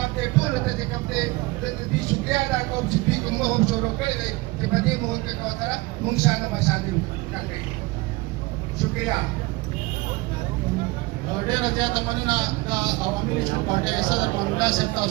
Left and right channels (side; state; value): left; quieter; 22.5 dB